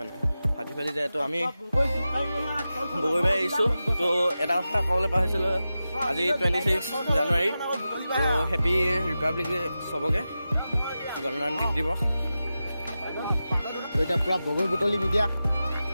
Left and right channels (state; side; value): inverted; both; correlation -0.93